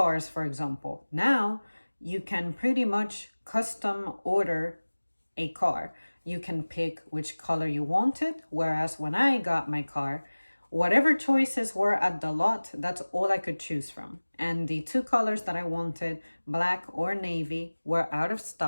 for example. Now you can pretty much custom order a car. You can pick which color you wanted, whereas when I got my car, whatever choices were at the lot, that's all I could choose from. And the two colors that I wanted, black or navy, were out of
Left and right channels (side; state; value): both; inverted; correlation -1.00